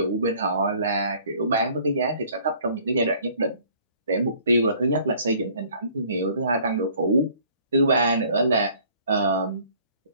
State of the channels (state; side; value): inverted; both; correlation -0.56